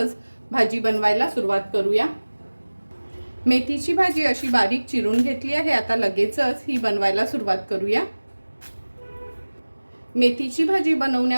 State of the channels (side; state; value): both; inverted; correlation -1.00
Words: भाजी बनवायला सुरुवात करूया. मेथीची भाजी अशी बारीक चिरून घेतली आहे. आता लगेचच ही बनवायला सुरुवात करूया. मेथीची भाजी